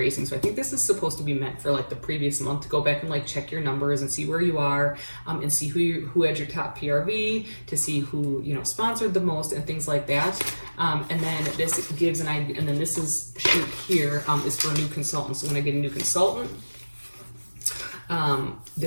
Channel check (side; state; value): both; inverted; correlation -1.00